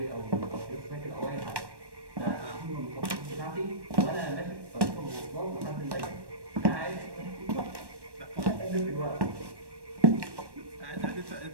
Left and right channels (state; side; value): late; left; 1.1 ms